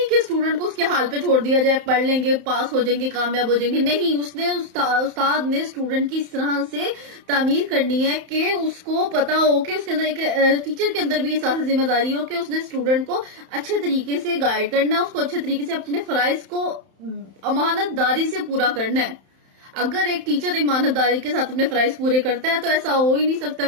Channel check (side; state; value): left; late; 31 ms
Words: کہ اسٹوڈنٹ کو اس کے حال پہ چھوڑ دیا جائے، پڑھ لیں گے پاس ہو جائیں گے کامیاب ہو جائیں گے، نہیں، اس نے استاد نے اسٹوڈنٹ کی اس طرح سے تعمیر کرنی ہے کہ اس کو پتا ہو کہ اس کے اندر ایک ٹیچر کے اندر بھی احساس ذمہ داری ہو کہ اس نے اسٹوڈنٹ کو اچھے طریقے سے گائیڈ کرنا ہے، اس کو اچھے طریقے سے اپنے فرائض کو امانت داری سے پورا کرنا ہے. اگر ایک ٹیچر امانت داری کے ساتھ اپنے فرائض پورے کرتا ہے تو ایسا ہو ہی نہیں سکتا